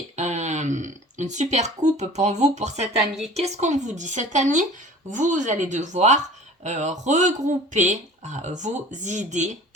une super coupe pour vous pour cette année. Qu'est-ce qu'on vous dit? Cette année, vous allez devoir regrouper vos idées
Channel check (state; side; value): normal; both; correlation 0.44